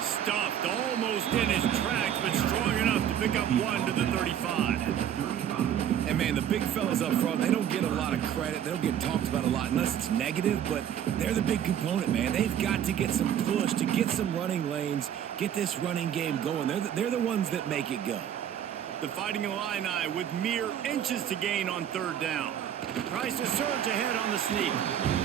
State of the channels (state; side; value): quieter; left; 9.9 dB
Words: Stuffed almost in his tracks, but strong enough to pick up 1 to the 35. And, man, the big fellas up front, they don't get a lot of credit. They don't get talked about a lot unless it's negative, but they're the big component, man. They've got to get some push, to get some running lanes, get this running game going. They're the ones that make it go. The Fighting Illini with mere inches to gain on 3rd down. Tries to surge ahead on the sneak.